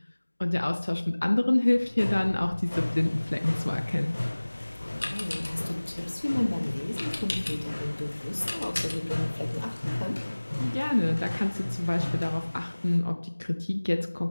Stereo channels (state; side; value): inverted; both; correlation -1.00